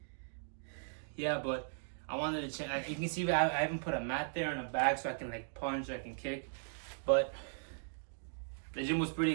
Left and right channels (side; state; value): left; silent; digital silence